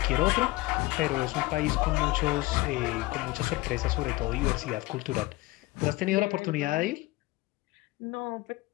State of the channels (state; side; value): quieter; right; 20.1 dB